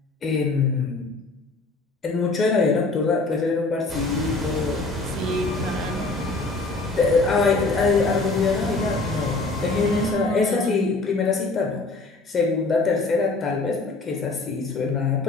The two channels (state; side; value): quieter; right; 3.5 dB